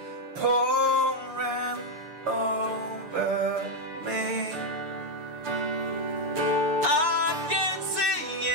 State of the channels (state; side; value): late; left; 6.7 ms